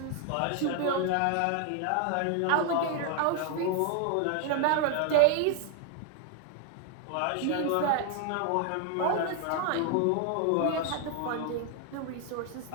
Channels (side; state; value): both; different; correlation 0.00